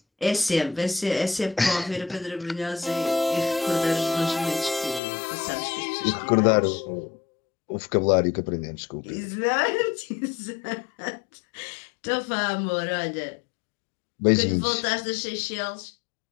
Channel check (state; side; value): drops out; right; at 5.0 s